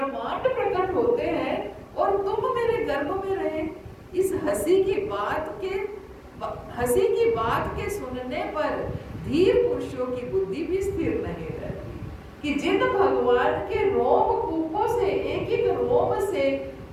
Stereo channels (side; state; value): both; identical; correlation 1.00